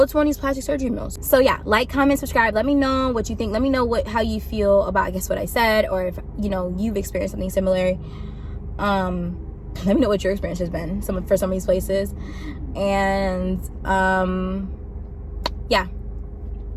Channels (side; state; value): both; identical; correlation 1.00